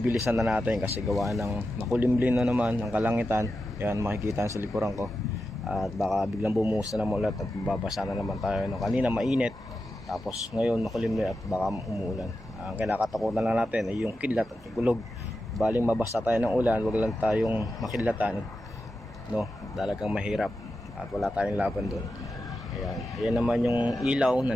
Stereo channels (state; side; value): normal; both; correlation 0.90